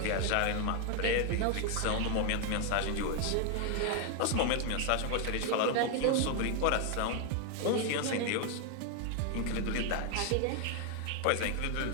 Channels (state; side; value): different; both; correlation 0.00